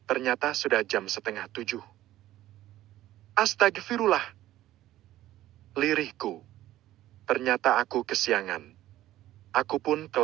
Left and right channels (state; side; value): quieter; left; 14.4 dB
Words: ternyata sudah jam 6:30. Astagfirullah. Lirihku. Ternyata aku kesiangan. Aku pun